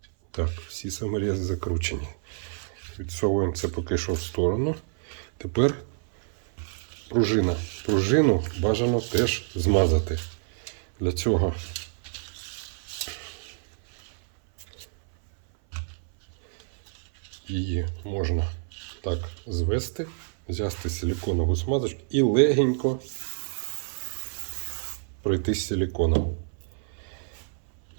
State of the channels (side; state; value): left; silent; 58 dB below the other